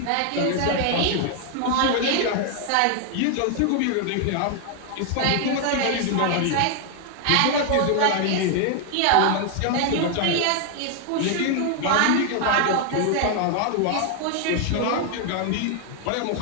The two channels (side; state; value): both; different; correlation 0.00